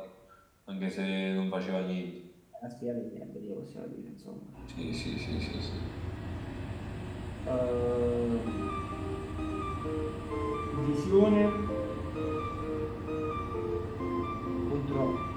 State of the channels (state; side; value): identical; both; correlation 1.00